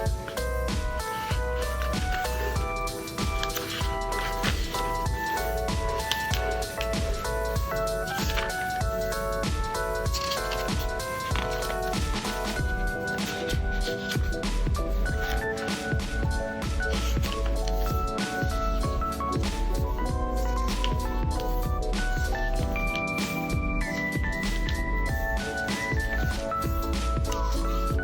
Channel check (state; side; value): identical; both; correlation 1.00